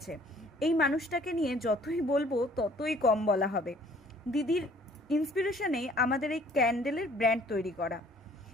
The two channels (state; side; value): normal; both; correlation 0.57